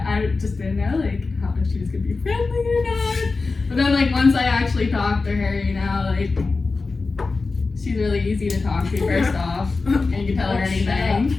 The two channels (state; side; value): quieter; right; 4.0 dB